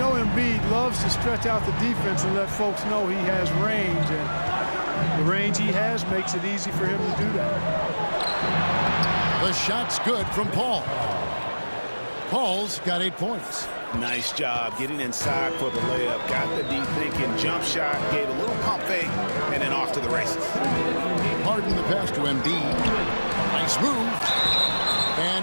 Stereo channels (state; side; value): inverted; both; correlation -1.00